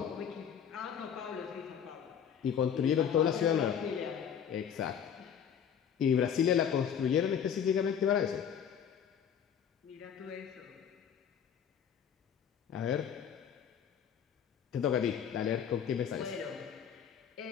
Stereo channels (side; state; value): right; quieter; 8.2 dB